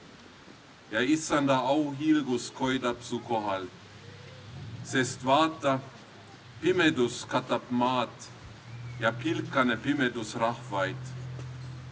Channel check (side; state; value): both; identical; correlation 1.00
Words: ja issanda auhiilgus koidab su kohal. Sest vaata, pimedus katab maad ja pilkane pimedus rahvaid.